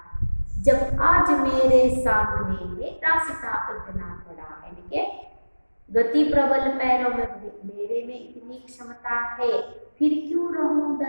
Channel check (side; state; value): both; inverted; correlation -1.00